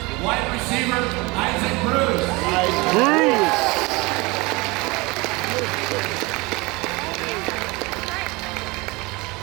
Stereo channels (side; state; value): left; quieter; 24.6 dB